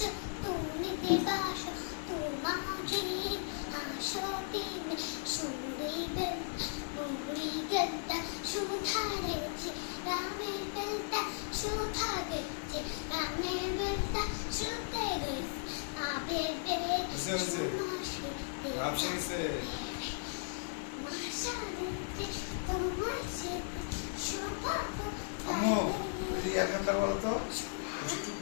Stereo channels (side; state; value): right; silent; digital silence